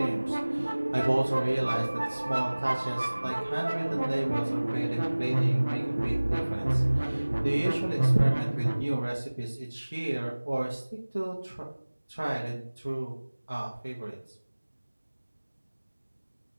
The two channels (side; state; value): both; inverted; correlation -1.00